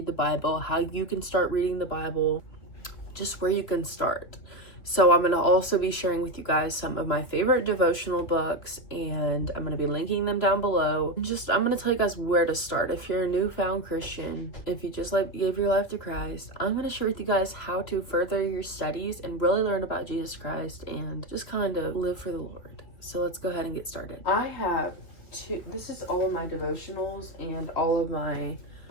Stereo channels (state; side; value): late; right; 3.2 ms